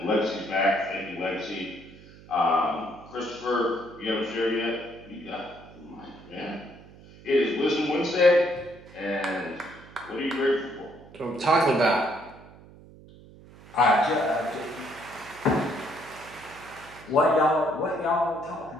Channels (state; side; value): noise; right; hum, 21 dB below the sound